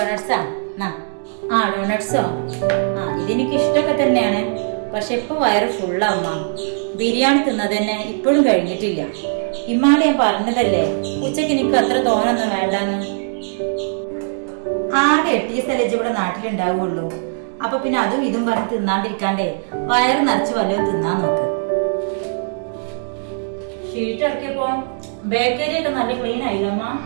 ആ ഡോണട്സോ? ആ ഇതെനിക്ക് ഇഷ്ടമൊക്കെ തന്നെയാണ്. പക്ഷെ ഇപ്പൊ വയറ് ഫുള്ളമ്മ. ബിരിയാണി തിന്നത് തന്നെ ഇപ്പോഴും കഴിഞ്ഞിട്ടില്ല. ഇമ്മാട് ഞാൻ പറഞ്ഞതല്ലേ ഉച്ചക്ക് എനിക്ക് അത്ര തോന്നൊന്നും വേണ്ടാന്ന്. ആകെ 8 ദിവസമല്ലേ ഇവിടെ നാട്ടിലുണ്ടാവുള്ളൂ. അപ്പൊ പിന്നെ അതും ഇതും പറഞ്ഞ് തിന്നാണ്ടിരിക്കാണ്ടേ വയറ് നിറച്ച് വല്ലതും തിന്നാൻ നോക്ക്. ഷീറ്റ് ഇറക്കിയപ്പോ ബേക്കറിയൊക്കെ നല്ല ക്ലീൻ ആയില്ലമ്മ.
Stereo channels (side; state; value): left; silent; digital silence